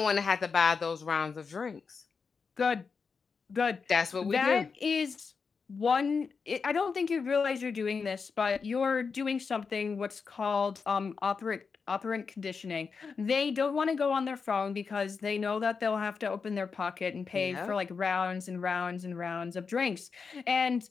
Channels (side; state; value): right; quieter; 5.3 dB